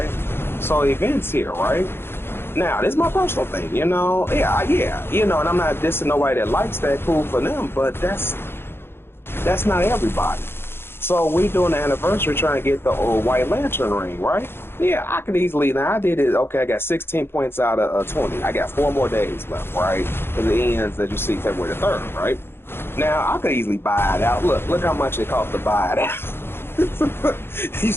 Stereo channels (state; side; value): late; right; 0.11 ms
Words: So events here, right? Now, this is my personal thing, yeah, and I'm not dissing nobody that likes that, cool for them, but that's not everybody. So we doing the anniversary trying to get the White Lantern ring, right? Yeah, I could easily, now I did it, okay, I got 16 points out of 20. I got 4 more days left, right? Because it ends, as you see, February the 3rd, right? Now, I could easily buy it out. Look how much it cost to buy it out. You